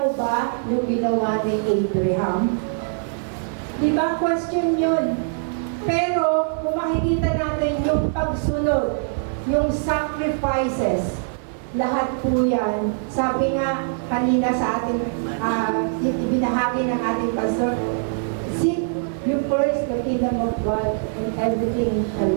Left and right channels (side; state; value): left; silent; 56 dB below the other